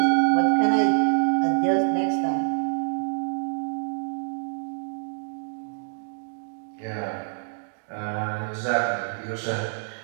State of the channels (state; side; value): silent; left; digital silence